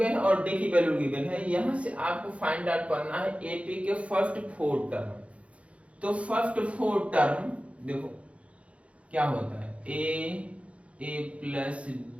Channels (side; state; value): left; late; 0.063 ms